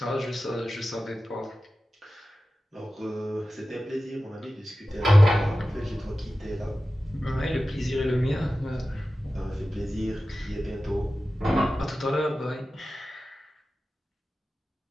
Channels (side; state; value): both; normal; correlation 0.94